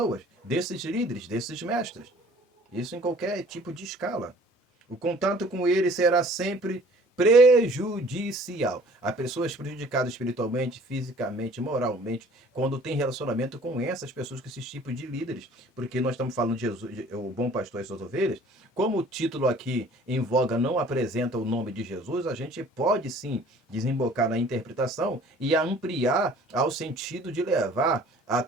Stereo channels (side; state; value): both; normal; correlation 0.52